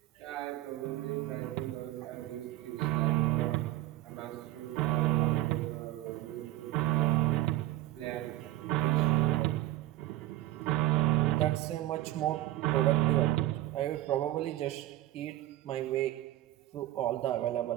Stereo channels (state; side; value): quieter; left; 15.4 dB